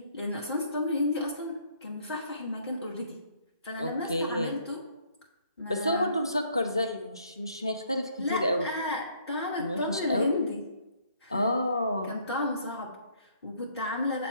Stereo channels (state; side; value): inverted; both; correlation -0.64